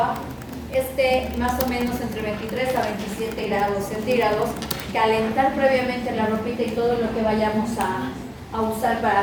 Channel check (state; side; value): identical; both; correlation 1.00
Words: esté más o menos entre 23 a 27 grados centígrados, calentar previamente la ropita y todo lo que vayamos a usar para